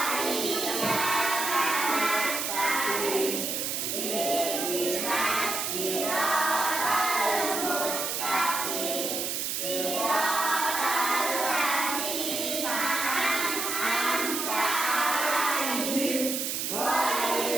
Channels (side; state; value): right; noise; hiss, 1 dB below the sound